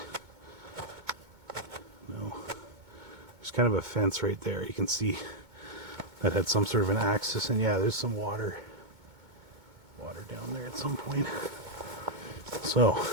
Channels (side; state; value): left; late; 2.2 ms